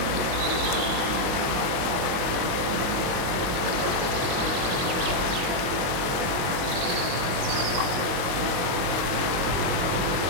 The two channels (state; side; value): late; left; 22 ms